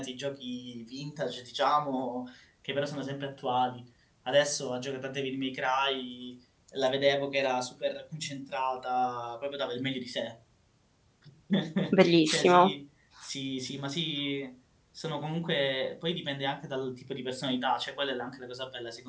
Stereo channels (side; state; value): both; identical; correlation 1.00